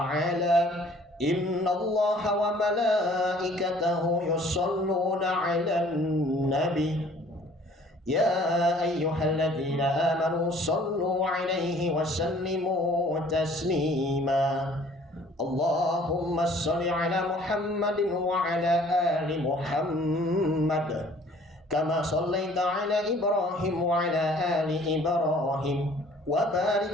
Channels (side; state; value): both; normal; correlation 0.54